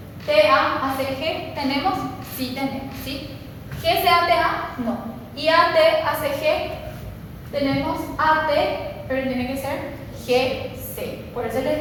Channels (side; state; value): both; identical; correlation 1.00